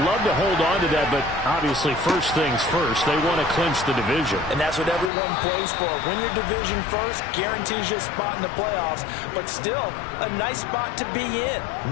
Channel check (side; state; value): right; drops out; at 5.1 s